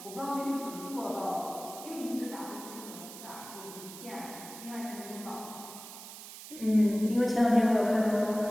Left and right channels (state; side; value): noise; right; hiss, 13 dB below the sound